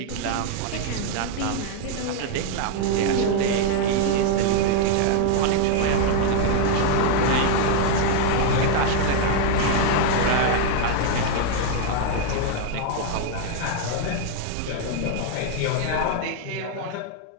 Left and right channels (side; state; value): both; different; correlation 0.00